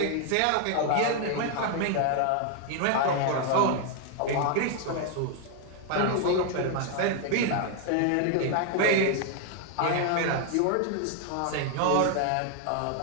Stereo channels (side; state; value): both; different; correlation 0.00